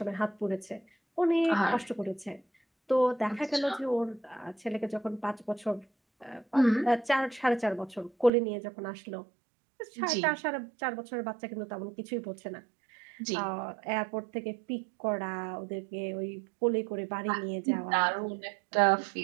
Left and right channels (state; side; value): drops out; left; at 8.3 s